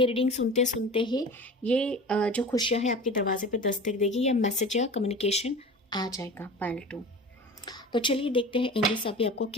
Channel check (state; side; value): normal; both; correlation 0.36